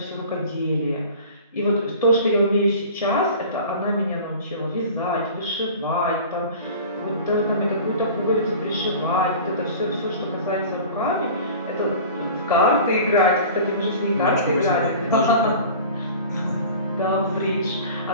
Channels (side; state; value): both; inverted; correlation -0.40